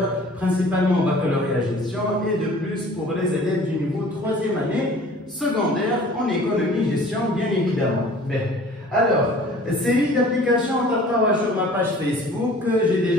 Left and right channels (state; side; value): normal; both; correlation 0.48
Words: principalement baccalauréat gestion, et de plus pour les élèves du niveau 3e année secondaire en économie gestion, bien évidemment. Alors, série d'applications sur ma page Facebook, j'ai